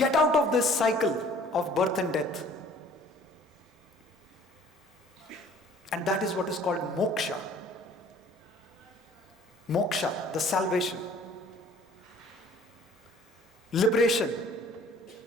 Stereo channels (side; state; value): both; normal; correlation 0.53